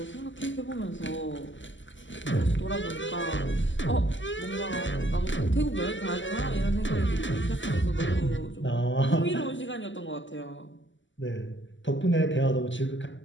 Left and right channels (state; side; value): late; right; 0.54 ms